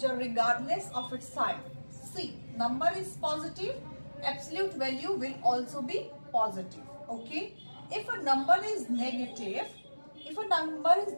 regardless of its sign. See, number is positive, absolute value will also be positive. Okay, if a number is negative,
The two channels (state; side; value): inverted; both; correlation -1.00